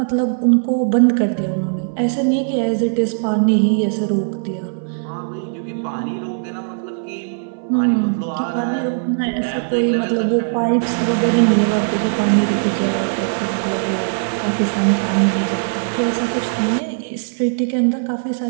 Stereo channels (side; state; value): left; silent; 60 dB below the other